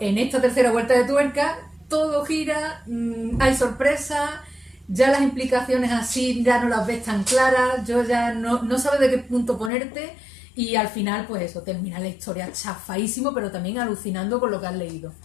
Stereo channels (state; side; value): drops out; right; at 9.7 s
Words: esta tercera vuelta de tuerca, todo gira, hay sorpresas, ya las implicaciones así ya no las ves tan claras, yo ya no sabes de qué punto ponerte, y al final pues eso, termina la historia chafadísimo, pero también alucinando con lo que has leído.